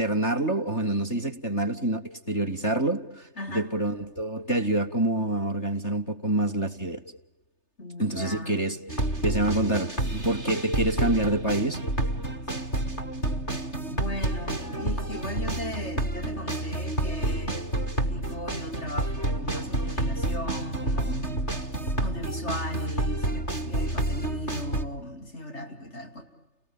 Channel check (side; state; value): right; late; 3.3 ms